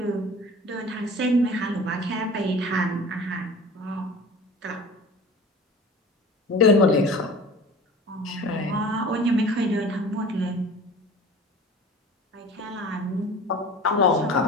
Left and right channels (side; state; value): both; normal; correlation 0.40